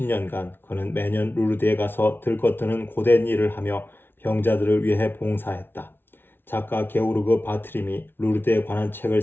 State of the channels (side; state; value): right; late; 0.11 ms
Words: 그는 매년 루르드에 가서 들것드는 고된 일을 하며 병자들을 위해 봉사했다. 작가 게오르그 바트림이 루르드에 관한 책을